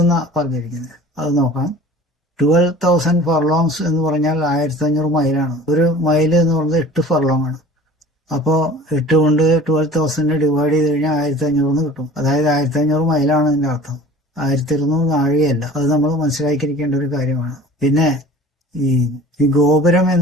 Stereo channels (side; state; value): both; normal; correlation 0.43